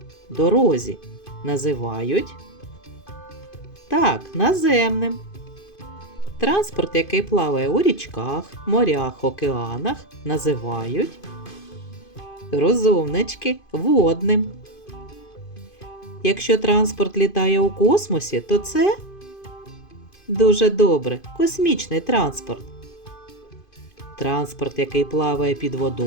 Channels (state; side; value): late; right; 2.5 ms